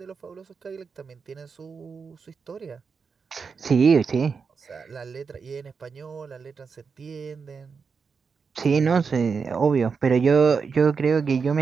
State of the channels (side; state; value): left; quieter; 5.5 dB